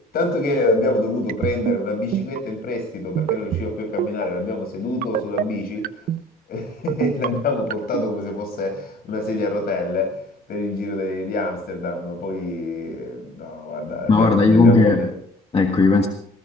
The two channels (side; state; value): both; normal; correlation 0.52